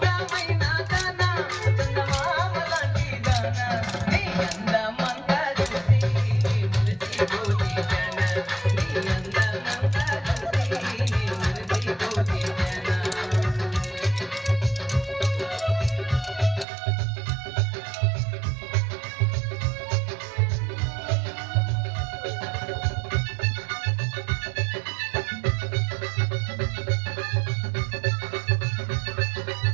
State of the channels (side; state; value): left; drops out; at 16.7 s